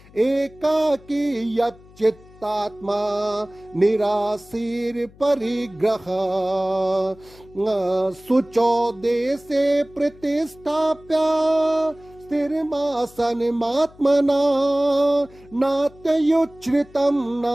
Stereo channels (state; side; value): noise; left; hum, 24 dB below the sound